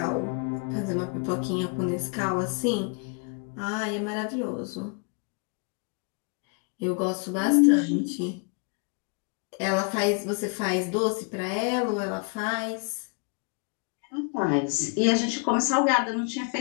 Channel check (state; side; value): quieter; right; 37.8 dB